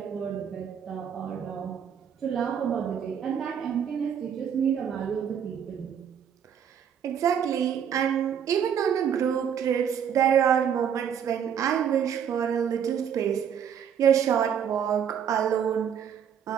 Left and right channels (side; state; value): left; quieter; 8.3 dB